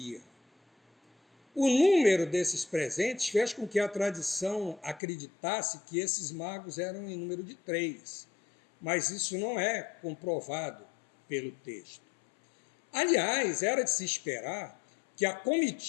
O número desses presentes fez com que a tradição acreditasse que esses magos eram em número de 3, mas isso não é comprovado pelo texto. Aliás, era de se esperar que a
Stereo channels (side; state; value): right; drops out; at 5.0 s